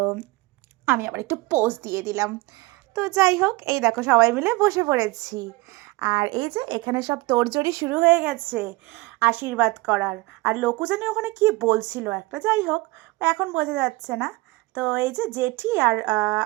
আমি আবার একটু পোজ দিয়ে দিলাম। তো যাই হোক, এই দেখো সবাই মিলে বসে পড়েছি। আর এই যে এখানে সব তোড়জোড়ি শুরু হয়ে গেছে আশীর্বাদ করার। আর লোকু জানি ওখানে কি বলছিল একটা, যাই হোক এখন বোঝা যাচ্ছে না। তো এই যে জেঠি আর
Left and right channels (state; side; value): quieter; left; 22.7 dB